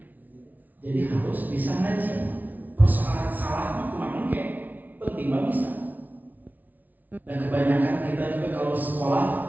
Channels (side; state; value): left; late; 0.079 ms